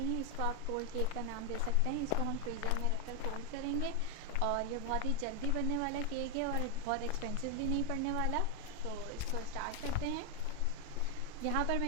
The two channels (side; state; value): both; different; correlation 0.00